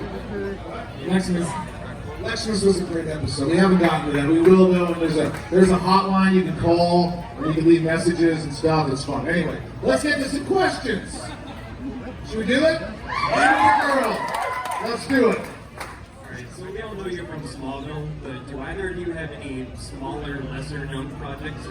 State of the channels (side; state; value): both; identical; correlation 1.00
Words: good. Leximus was a great episode. We haven't gotten to that. We will though. There's a hotline you can call and you can leave messages and stuff. It's fun. Anyway, let's get to some questions. Should we do it? Girl. Let's do it. Alright, so we all know you're from Smallville, but do either of you have any smaller, lesser known projects